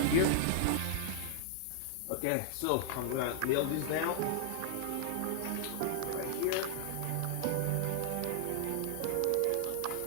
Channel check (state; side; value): different; both; correlation -0.01